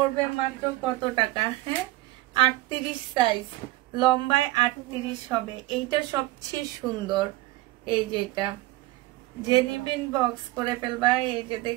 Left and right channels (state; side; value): quieter; left; 18.8 dB